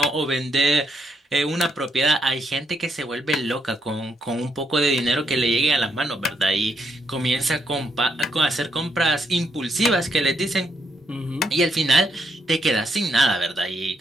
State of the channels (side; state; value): both; normal; correlation 0.77